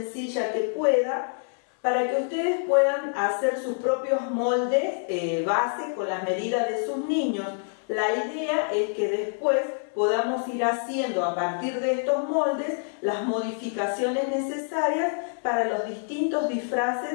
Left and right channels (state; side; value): silent; right; digital silence